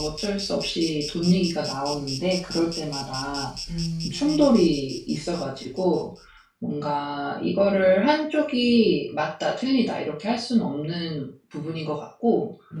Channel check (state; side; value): identical; both; correlation 1.00